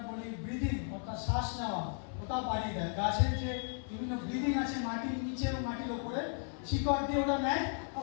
বলি ব্রিদিং, অর্থাৎ শ্বাস নেওয়া, ওটা বাড়িয়ে দেয়। গাছের যে বিভিন্ন ব্রিদিং আছে, মাটির নিচে এবং মাটির ওপরে, শিকড় দিয়ে ওটা নেয়,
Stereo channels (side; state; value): right; silent; 54 dB below the other